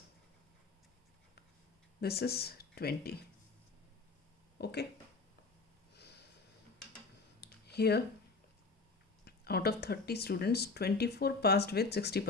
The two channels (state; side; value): quieter; right; 4.0 dB